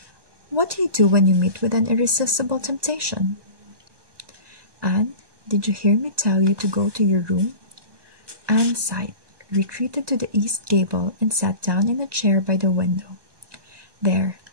What do you do when you meet with an irresistible temptation? Anne, did you hear me tell you to go to your room? Anne sighed, retreated to the east gable, and sat down in a chair by the window. There,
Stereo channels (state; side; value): late; left; 1.2 ms